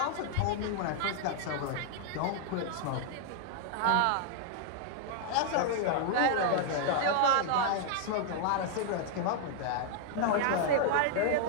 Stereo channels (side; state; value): both; different; correlation -0.01